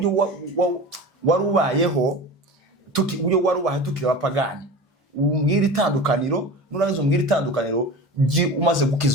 warubayeho uburyo warubaye tukira abapagani. Umbwira itandukaniro, nurangiza umbwira itandukaniro umaze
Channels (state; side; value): normal; both; correlation 0.33